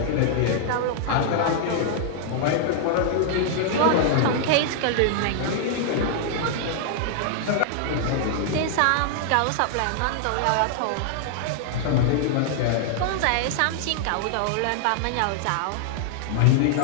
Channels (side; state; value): both; different; correlation -0.01